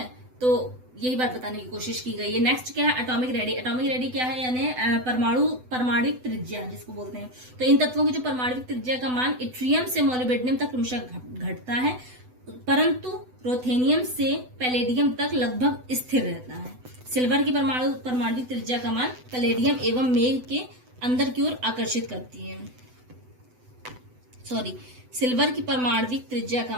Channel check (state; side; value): late; left; 8.0 ms